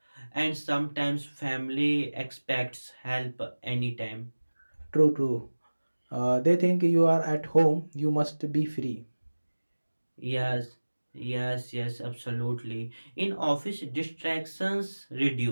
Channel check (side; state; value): both; inverted; correlation -1.00